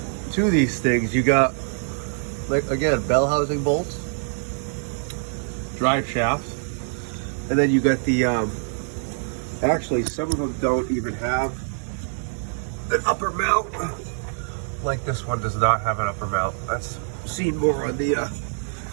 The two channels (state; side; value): silent; left; 62 dB below the other